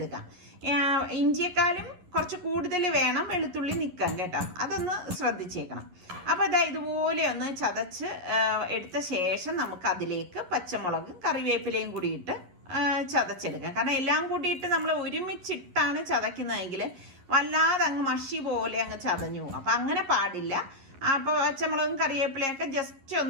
ഇഞ്ചിയെക്കാളും കുറച്ച് കൂടുതൽ വേണം വെളുത്തുള്ളി നിൽക്കാൻ കേട്ടോ, അതൊന്ന് ശ്രദ്ധിച്ചേക്കണം. അപ്പോൾ അതാ ഇതുപോലെ ഒന്ന് ചതച്ച് എടുത്ത ശേഷം നമുക്ക് അതിലേക്ക് പച്ചമുളക് കറിവേപ്പിലയും കൂടി ഇട്ട് ചതച്ചെടുക്കാം. കാരണം എല്ലാം കൂടിയിട്ട് നമ്മൾ ഒരുമിച്ചിട്ടാണ് ചതയ്ക്കുന്നതെങ്കിൽ വല്ലാതെ അങ്ങ് മഷി പോലെ അങ്ങ് ചതഞ്ഞു പോകും. അപ്പം അങ്ങനെ പാടില്ല. അപ്പോൾ പച്ചമുളകും കറിവേപ്പിലയൊക്കെ ജസ്റ്റ്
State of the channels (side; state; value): left; late; 11 ms